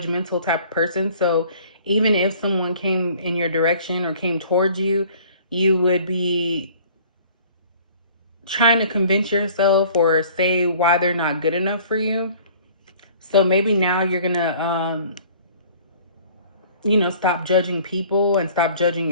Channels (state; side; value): inverted; both; correlation -0.52